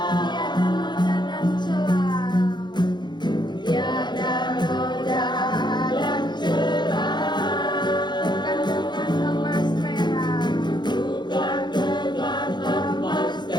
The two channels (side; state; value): right; late; 0.21 ms